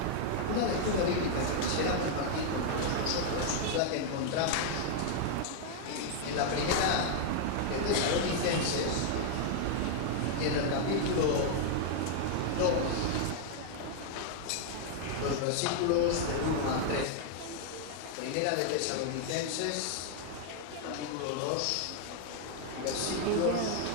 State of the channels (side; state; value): both; different; correlation 0.00